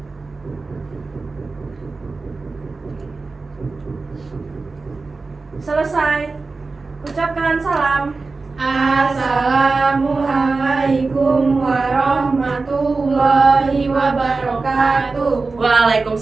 Selesai. Ucapkan salam. Assalamualaikum warahmatullahi wabarakatuh.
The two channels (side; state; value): left; quieter; 3.9 dB